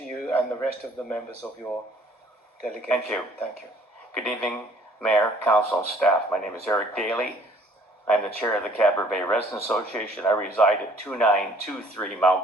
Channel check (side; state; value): both; normal; correlation 0.57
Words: you and the rest of the members of your delegation. Thank you. Thank you. Good evening, Mayor, Council, and staff. My name is Eric Daly. I'm the chair of the Cadboro Bay Residents Association. I reside at 2923